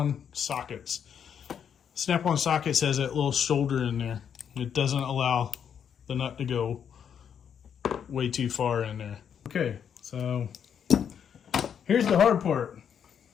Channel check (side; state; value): right; quieter; 8.0 dB